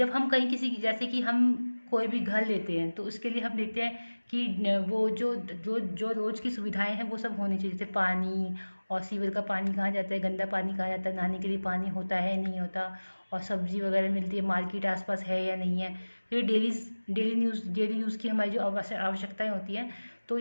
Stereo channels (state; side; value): inverted; both; correlation -1.00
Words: हम कहीं जैसे कि हम कोई भी घर लेते हैं तो उसके लिए हम देखते हैं कि वो जो रोज़ की सुविधाएं हैं वो सब होनी चाहिए, जैसे पानी और सीवर का पानी कहाँ जाता है, गंदा पानी कहाँ जाता है, नहाने के लिए पानी होता है नहीं होता, और सब्जी वगैरह मिलती है, मार्केट आसपास है या नहीं है। तो ये डेली यूज़ की हमारी जो आवश्यकताएं होती हैं, तो